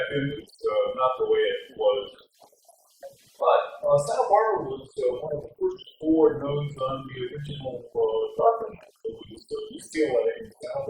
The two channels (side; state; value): both; identical; correlation 1.00